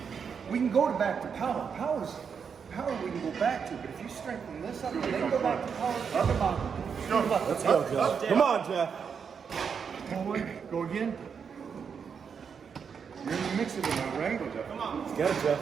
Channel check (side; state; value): left; quieter; 6.5 dB